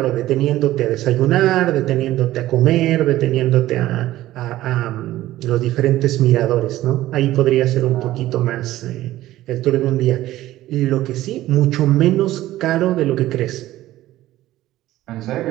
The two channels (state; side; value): quieter; left; 15.2 dB